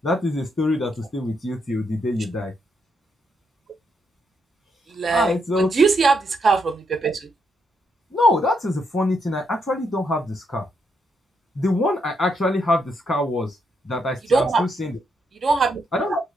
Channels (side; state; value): both; normal; correlation 0.78